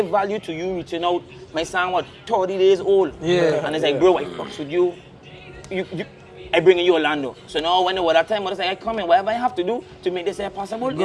value to you reaching out. My son was 30 days old. Yeah. And it's like, bro, I fucks with you. I bring you Orlando. So now when it was that time, I was like, I come in, whatever I have to do to make this here possible, you know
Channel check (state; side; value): identical; both; correlation 1.00